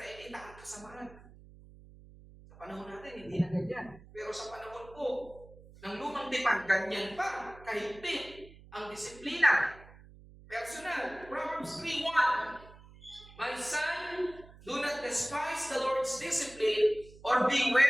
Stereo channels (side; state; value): right; noise; hum, 21 dB below the sound